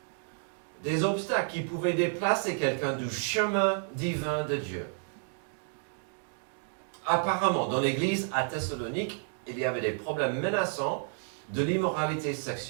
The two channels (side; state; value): left; silent; 56 dB below the other